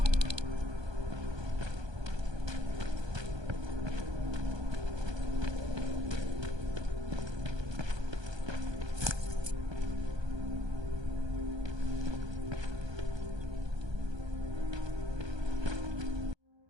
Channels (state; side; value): late; left; 1.2 ms